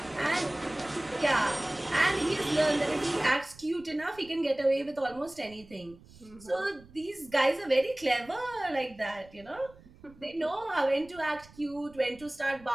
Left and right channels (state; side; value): noise; right; rumble, 23 dB below the sound